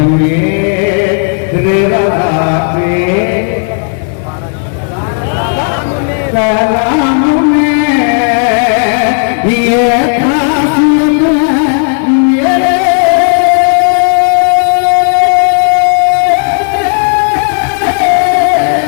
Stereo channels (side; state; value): right; silent; 55 dB below the other